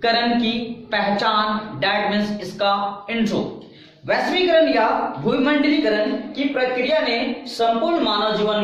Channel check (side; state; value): both; identical; correlation 1.00